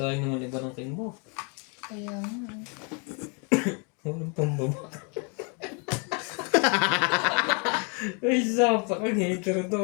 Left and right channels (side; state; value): right; quieter; 35.7 dB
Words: naman iba ng king mo. Kaya nga. Walang pambaba. Ay, sapa kang hater